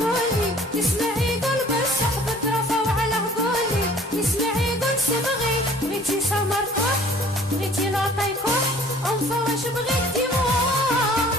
تسمعي يقول بالصح بترفوا على هقولي تسمعي يقول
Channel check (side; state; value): both; normal; correlation 0.53